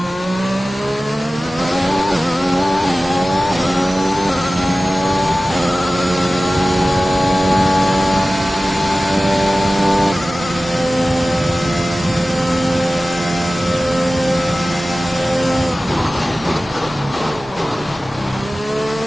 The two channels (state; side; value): normal; both; correlation 0.96